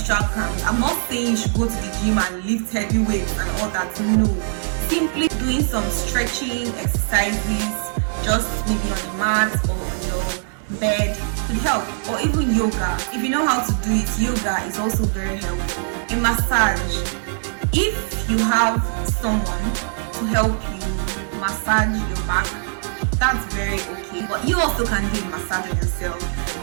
cramps. I'm not saying you should go to the gym and lift heavy weights and all that. No. Simply doing some stretching exercises, just maybe on the mat or on your bed, could help. Or even yoga. If you know how to do it, yoga is also very helpful. A massage. If you have someone to help you massage your back, that's very okay. But you also can do a massage on yourself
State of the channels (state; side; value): silent; left; digital silence